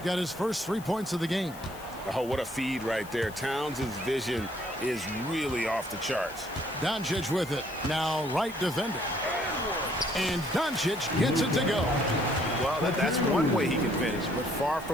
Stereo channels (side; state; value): left; noise; hiss, 19 dB below the sound